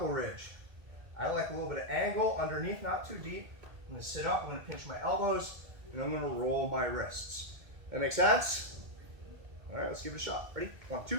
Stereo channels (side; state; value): left; late; 2.2 ms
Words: ridge. I like a little bit of angle underneath, not too deep. I'm going to sit up, I'm going to pinch my elbows, and I'm going to roll my wrists. That make sense? All right, let's give it a shot. Ready? 1,